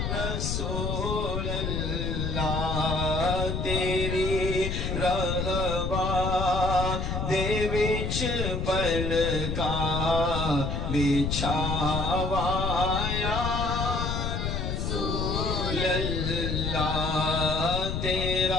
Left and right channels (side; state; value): left; noise; rumble, 1 dB below the sound